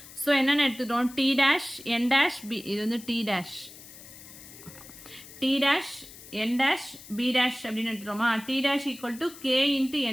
So என்னென்னு எடுத்துக்கிறோம்? t dash n dash b. இது வந்து t dash n dash b dash அப்படின்னு எடுத்துட்டோமா? t dash equal to k into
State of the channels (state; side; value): noise; left; hiss, 17 dB below the sound